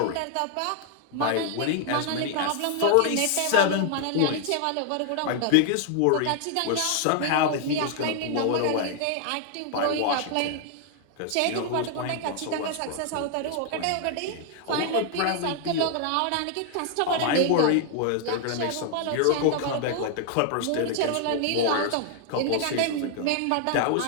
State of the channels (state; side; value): different; both; correlation 0.00